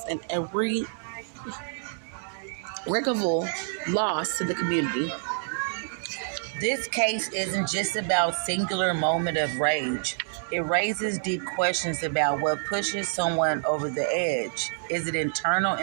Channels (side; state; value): left; silent; digital silence